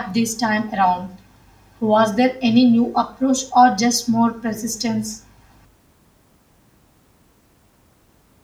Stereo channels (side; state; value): both; identical; correlation 1.00